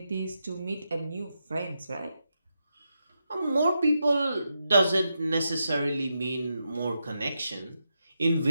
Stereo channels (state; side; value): inverted; both; correlation -0.86